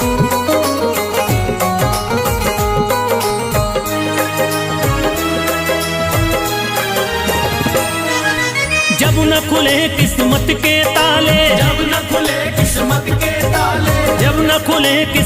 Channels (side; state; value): both; identical; correlation 1.00